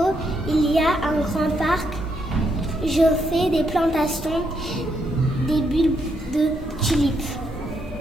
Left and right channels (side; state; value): both; normal; correlation 0.77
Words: il y a un grand parc. Je fais des plantations, des bulbes de tulipes.